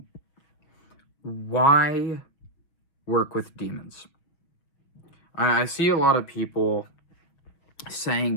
why work with demons? I see a lot of people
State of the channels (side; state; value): right; late; 6.1 ms